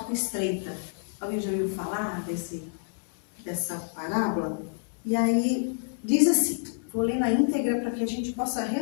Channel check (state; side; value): silent; right; digital silence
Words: estreita. Alguém já ouviu falar dessa parábola? E aí diz assim, vou ler na íntegra para que a gente possa